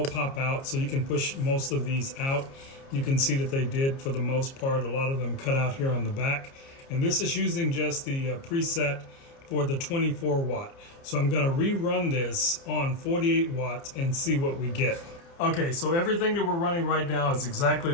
pop out, so you can push most of these out. You can see that they did for the most part. A lot of them cut out here on the back, and this is using just the preset for the 24 watt. So I'm gonna rerun this on 48 watts and see what we get. Okay, so everything that we're running right now is exactly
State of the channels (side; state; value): right; late; 30 ms